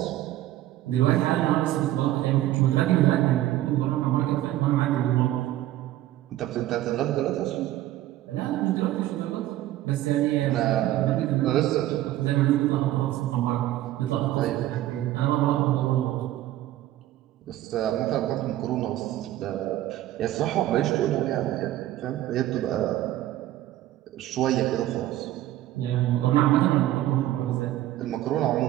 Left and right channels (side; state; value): left; quieter; 14.3 dB